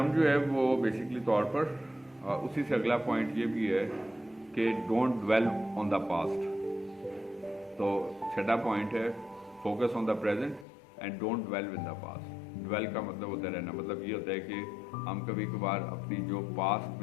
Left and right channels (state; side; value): drops out; right; at 10.7 s